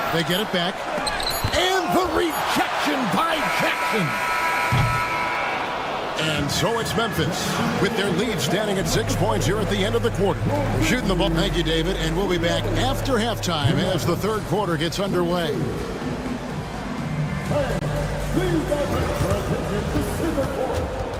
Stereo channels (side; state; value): both; identical; correlation 1.00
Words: They get it back. And the rejection by Jackson. And so it's Memphis with their lead standing at 6 points here at the end of the quarter. Shooting the ball. Thank you, David. And we'll be back after halftime as the third quarter gets underway. Please gather your attention to center court.